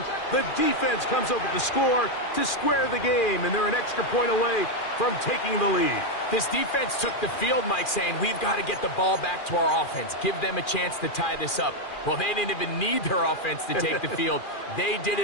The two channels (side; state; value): right; late; 2.4 ms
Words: The defense comes up with the score to square the game, and they're an extra point away from taking the lead. This defense took the field, Mike, saying, we've got to get the ball back to our offense. Give them a chance to tie this up. Well, they didn't even need their offense to take the field. They did